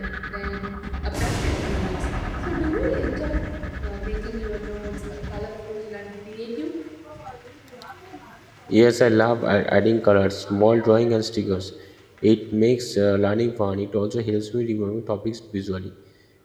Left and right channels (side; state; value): both; identical; correlation 1.00